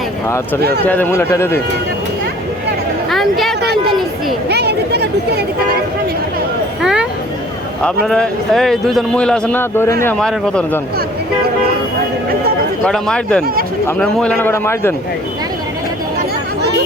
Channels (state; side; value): normal; both; correlation 0.52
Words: আচ্ছা ঠিক আছে দে মুলে টেরে দে। আমি কে কোনটা নিচ্ছি হ্যাঁ আপনারা এই দুইজন মহিলা আছেন না দৌড়ে নিয়ে মারেন কত জন কটা মার দেন আপনার মহিলা না কটা মার দেন।